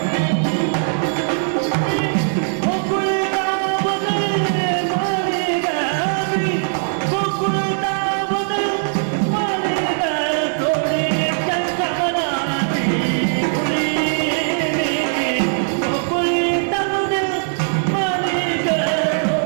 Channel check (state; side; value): silent; left; digital silence